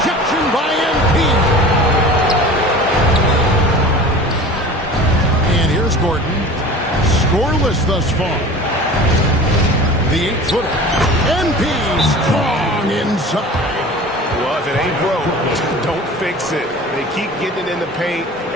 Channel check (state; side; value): normal; both; correlation 0.39